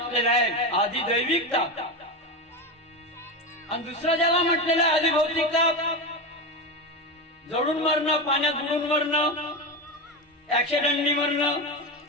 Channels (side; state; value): both; normal; correlation 0.18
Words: आहे आधी दैविकता. आणि दुसरं ज्याला म्हटलेलं आहे आधी भौतिकता, जडून मरणं, पाण्यात बुडून मरणं, ऍक्सिडेंटनी मरणं,